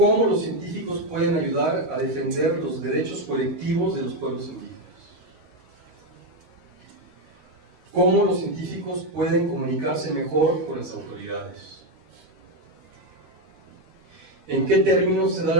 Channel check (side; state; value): left; late; 13 ms